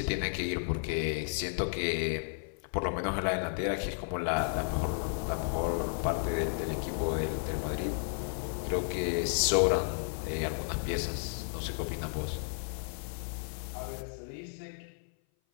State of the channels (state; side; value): silent; right; 56 dB below the other